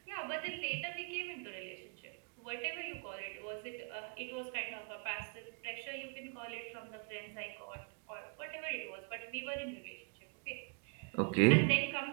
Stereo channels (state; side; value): quieter; left; 35.5 dB